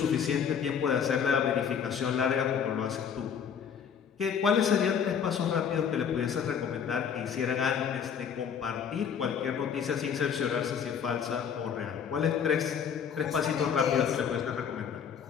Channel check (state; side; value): quieter; right; 7.5 dB